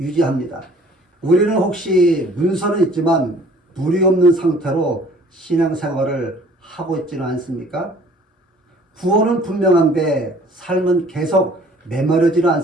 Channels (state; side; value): normal; both; correlation 0.54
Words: 우리는 혹시 문서는 있지만 물이 없는 상태로 신앙생활을 하고 있지는 않습니까? 구원은 분명한데 삶은 계속 메마르지는